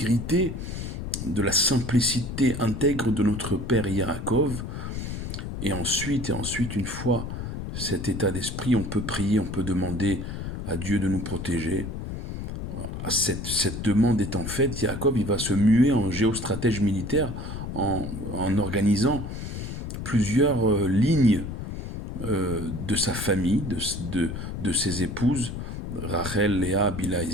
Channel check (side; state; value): left; noise; rumble, 6 dB below the sound